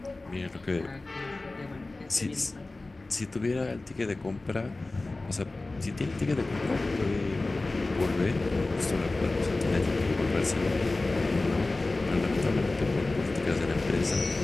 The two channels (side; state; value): right; quieter; 3.1 dB